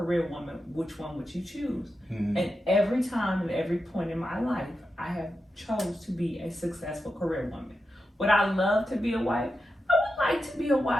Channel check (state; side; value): normal; both; correlation 0.89